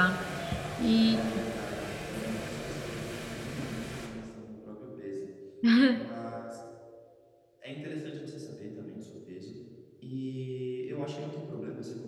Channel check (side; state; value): both; identical; correlation 1.00